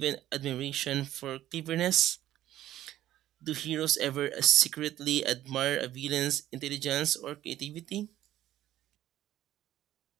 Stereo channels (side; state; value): left; quieter; 13.4 dB